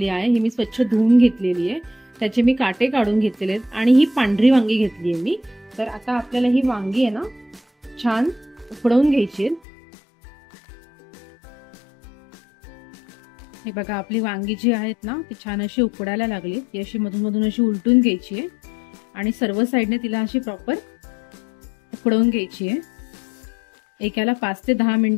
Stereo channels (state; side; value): drops out; right; at 9.6 s